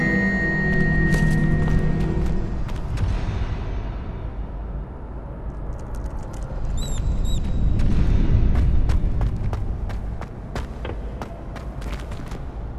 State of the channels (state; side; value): identical; both; correlation 1.00